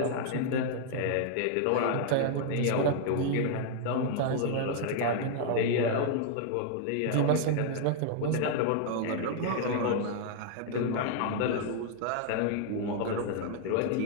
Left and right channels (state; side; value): different; both; correlation 0.00